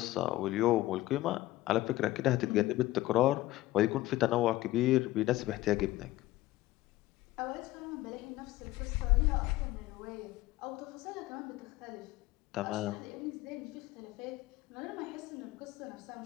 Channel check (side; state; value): right; quieter; 16.8 dB